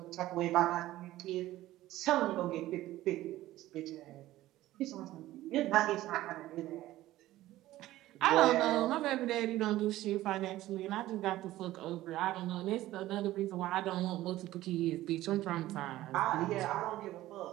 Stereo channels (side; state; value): left; quieter; 15.6 dB